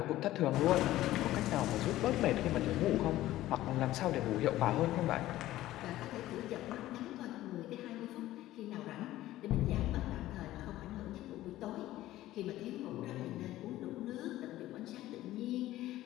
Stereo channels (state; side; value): quieter; right; 15.2 dB